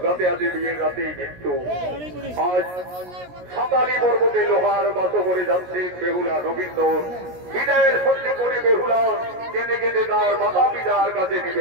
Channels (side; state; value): left; late; 17 ms